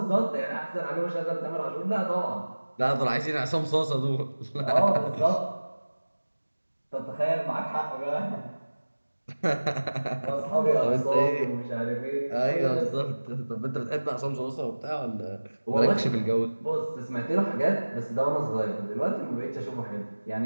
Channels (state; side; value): inverted; both; correlation -1.00